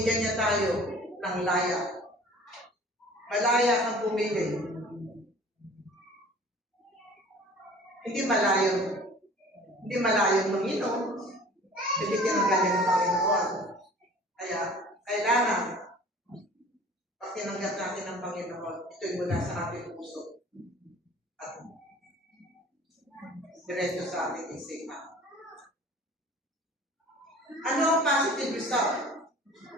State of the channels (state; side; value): normal; both; correlation 0.46